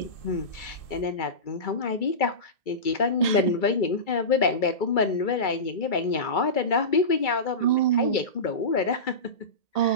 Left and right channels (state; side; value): late; right; 2.3 ms